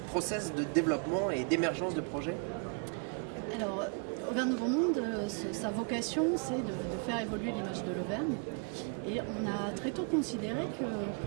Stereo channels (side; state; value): left; quieter; 38.9 dB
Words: process de développement et d'émergence de projets? Alors, Auvergne Nouveau Monde, sa vocation, c'est de faire évoluer l'image de l'Auvergne. Et on a très tôt considéré que